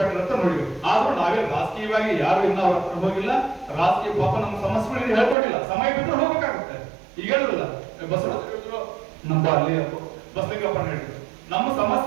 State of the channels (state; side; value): drops out; left; at 5.4 s